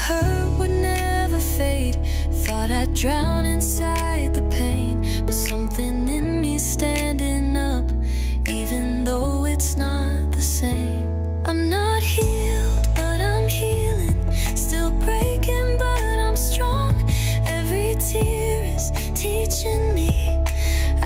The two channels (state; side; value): identical; both; correlation 1.00